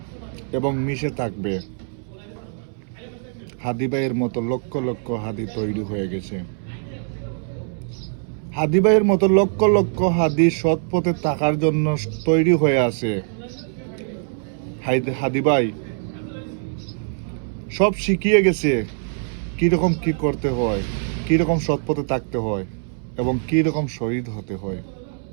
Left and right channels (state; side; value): silent; left; 64 dB below the other